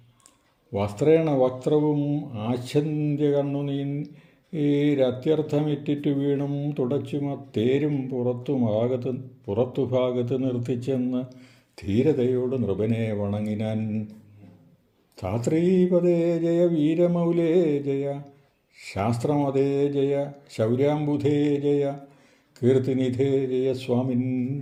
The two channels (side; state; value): both; identical; correlation 1.00